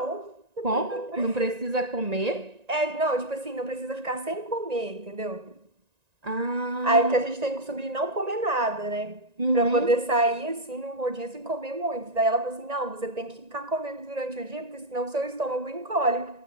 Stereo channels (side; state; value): left; late; 1.9 ms